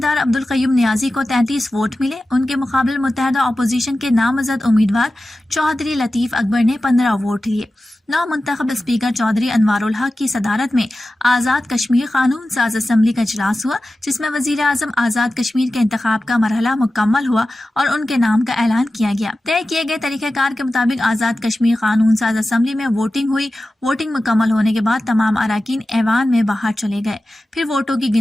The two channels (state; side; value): normal; both; correlation 0.94